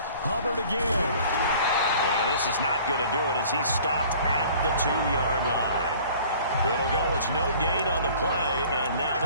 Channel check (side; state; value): both; inverted; correlation -0.49